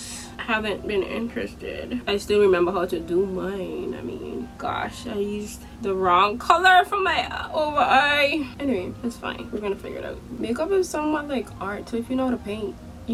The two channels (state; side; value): identical; both; correlation 1.00